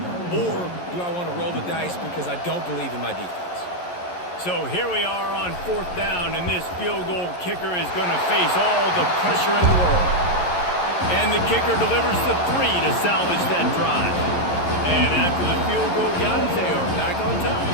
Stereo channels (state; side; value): late; right; 11 ms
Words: Or do I want to roll the dice because I don't believe in my defense? So here we are on 4th down, and this field goal kicker is going to face all the pressure in the world. And the kicker delivers the 3 to salvage that drive. And after the field goal, guys, they are back on